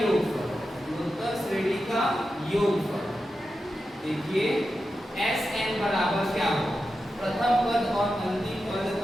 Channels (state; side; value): normal; both; correlation 0.90